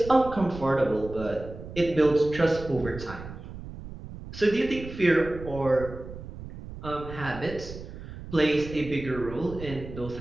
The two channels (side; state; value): right; noise; rumble, 12 dB below the sound